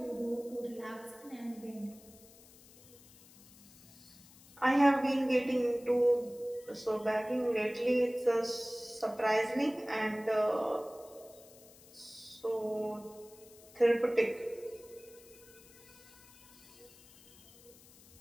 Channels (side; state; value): left; noise; hiss, 23 dB below the sound